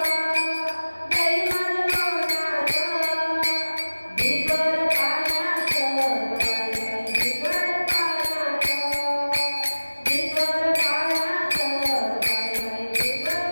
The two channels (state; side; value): inverted; both; correlation -1.00